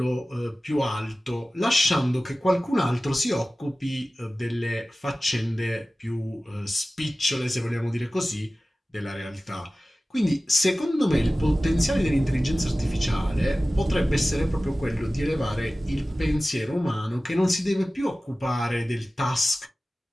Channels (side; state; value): both; normal; correlation 0.96